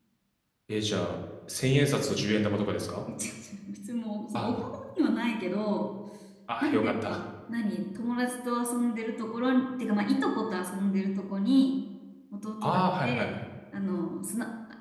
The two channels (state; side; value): identical; both; correlation 1.00